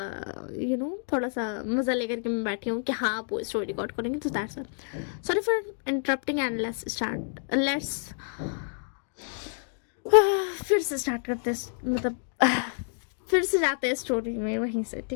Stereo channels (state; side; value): silent; right; 58 dB below the other